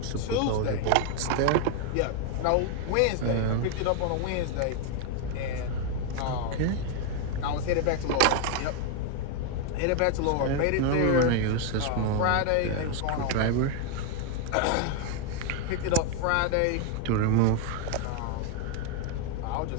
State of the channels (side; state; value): both; different; correlation 0.01